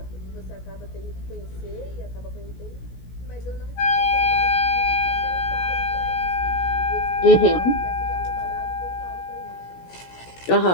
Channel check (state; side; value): late; right; 17 ms